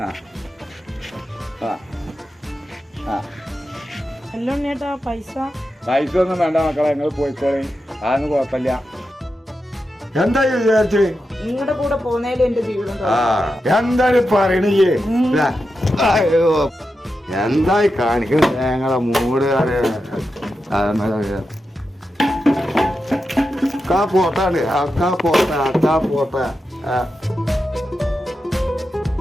എല്ലാം ഉണ്ണിയേട്ടാ പൈസ ഒന്നും വേണ്ട മക്കളെ, നിങ്ങൾ പോയിക്കോളി, അതൊന്നും കുഴപ്പമില്ല. എന്താ വിചാരിച്ചു നിങ്ങളുടെ കൂടെ പോന്നേലും എന്റെ ജീവിതം എന്താണ് പറയണേ? എന്തായി കാണിക്കുന്നത് ഞങ്ങളെ മൂട് പോട്ടാണ് പോട്ട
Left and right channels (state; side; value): normal; both; correlation 0.89